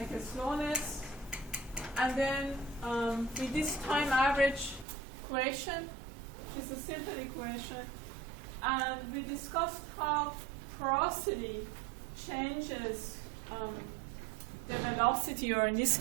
a slowness, and then with this time average equation, which is a simple equation, and we discussed how porosity changes the velocity, or in this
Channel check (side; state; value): left; drops out; at 4.9 s